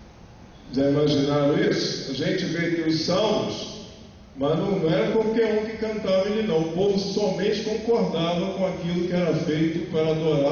Já imaginaram isso? A gente vê aqui os salmos, mas não era qualquer um que cantava ele não. O povo somente concordava com aquilo que era feito para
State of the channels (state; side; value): identical; both; correlation 1.00